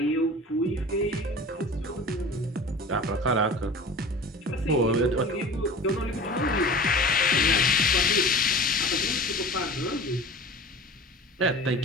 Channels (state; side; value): normal; both; correlation 0.38